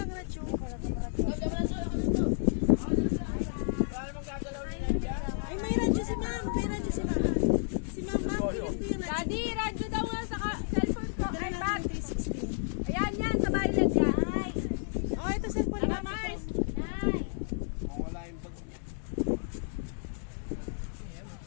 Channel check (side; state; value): right; silent; digital silence